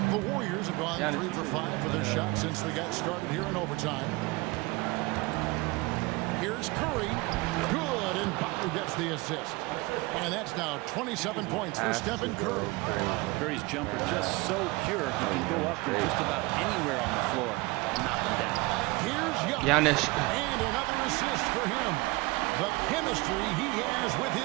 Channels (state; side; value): quieter; left; 23.8 dB